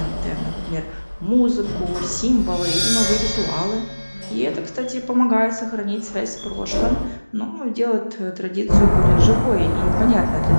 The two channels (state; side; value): inverted; both; correlation -1.00